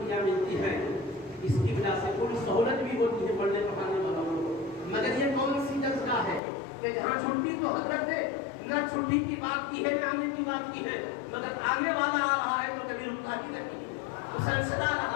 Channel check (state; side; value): drops out; right; at 6.4 s